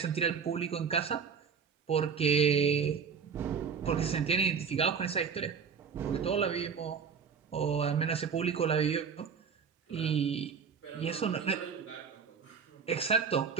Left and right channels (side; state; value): left; quieter; 6.4 dB